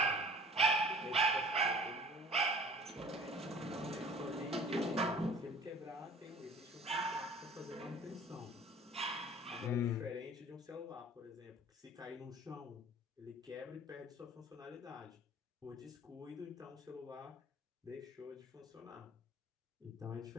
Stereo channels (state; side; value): normal; both; correlation 0.47